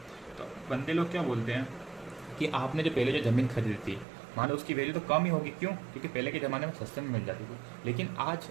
तो बंदे लोग क्या बोलते हैं कि आपने जो पहले जो ज़मीन खरीदी थी, मान लो उसकी वैल्यू तो कम ही होगी, क्यों? क्योंकि पहले के ज़माने में सस्ते में मिल जाती थी, लेकिन आज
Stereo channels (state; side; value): drops out; left; at 4.0 s